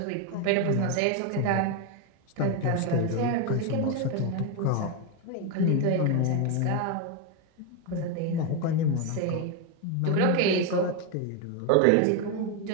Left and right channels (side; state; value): both; different; correlation 0.02